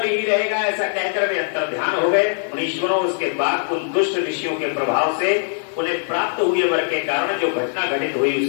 ही रहेगा। ऐसा कहकर वे अंतर्ध्यान हो गए। मुनीश्वरों, उसके बाद उन दुष्ट ऋषियों के प्रभाव से उन्हें प्राप्त हुए वर के कारण जो घटना घटित हुई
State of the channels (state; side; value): silent; right; 60 dB below the other